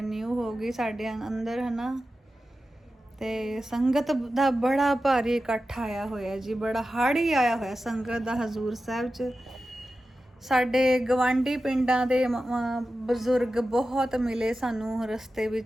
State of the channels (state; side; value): normal; both; correlation 0.93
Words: ਹੋ ਗਈ ਸਾਡੇ ਅੰਦਰ, ਹੈ ਨਾ। ਤੇ ਸੰਗਤ ਦਾ ਬੜਾ ਭਾਰੀ ਇਕੱਠ ਆਇਆ ਹੋਇਆ ਜੀ, ਬੜਾ ਹਾੜੀ ਆਇਆ ਹੋਇਆ ਸੰਗਤ ਦਾ ਹਜ਼ੂਰ ਸਾਹਿਬ 'ਚ। ਸਾਡੇ ਗਵਾਂਢੀ ਪਿੰਡਾਂ ਦੇ ਬਜ਼ੁਰਗ ਬਹੁਤ ਮਿਲੇ ਸਾਨੂੰ ਰਸਤੇ